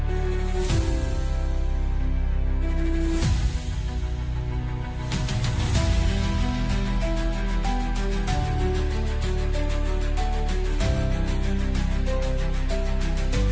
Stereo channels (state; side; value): identical; both; correlation 1.00